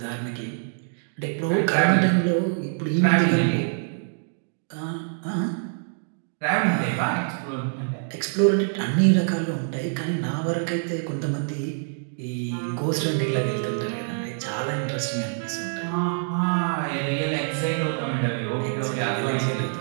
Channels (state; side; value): silent; left; digital silence